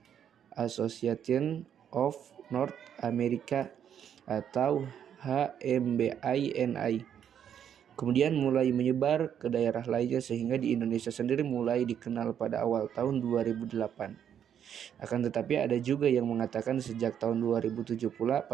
Association of North America atau HMBINI. Kemudian mulai menyebar ke daerah lainnya sehingga di Indonesia sendiri mulai dikenal pada awal tahun 2008. Akan tetapi ada juga yang mengatakan sejak tahun 2007 pula,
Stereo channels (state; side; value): quieter; left; 9.0 dB